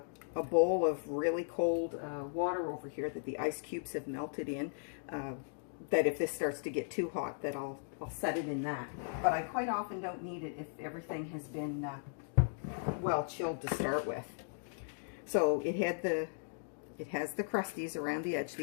bowl of really cold water over here that the ice cubes have melted in, that if this starts to get too hot, that I'll set it in that. But I quite often don't need it if everything has been well chilled to start with. So it has the crusties around the edge,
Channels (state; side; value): silent; right; digital silence